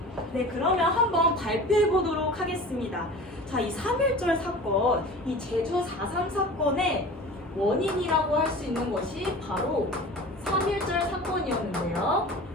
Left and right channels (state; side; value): normal; both; correlation 0.38